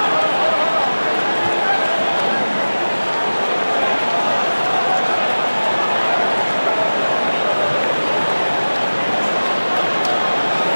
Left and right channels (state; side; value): inverted; both; correlation -1.00